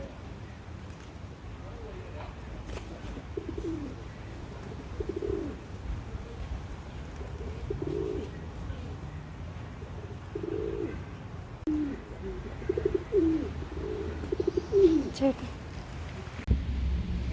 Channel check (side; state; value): both; identical; correlation 1.00